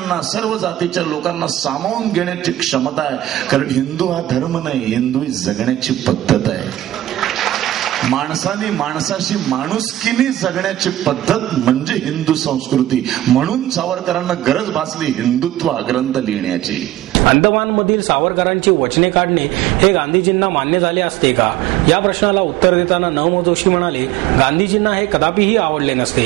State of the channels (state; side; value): quieter; left; 14.1 dB